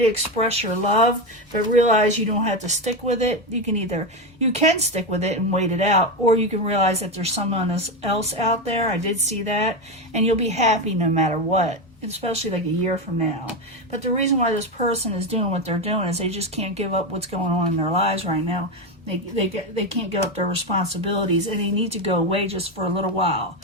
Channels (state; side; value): normal; both; correlation 0.13